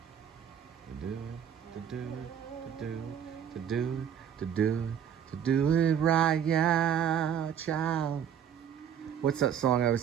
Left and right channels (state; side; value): quieter; left; 8.6 dB